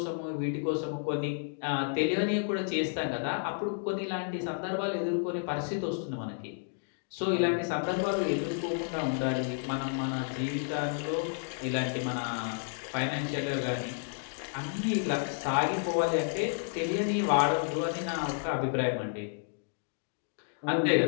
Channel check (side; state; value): right; silent; digital silence